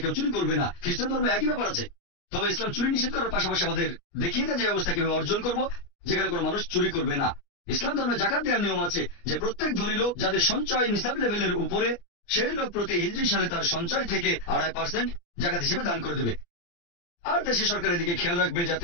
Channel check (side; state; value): right; late; 29 ms